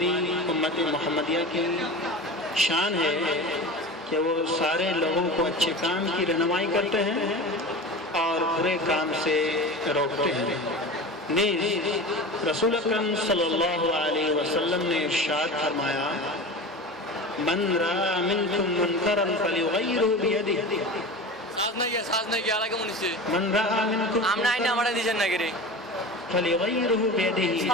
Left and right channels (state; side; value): normal; both; correlation 0.32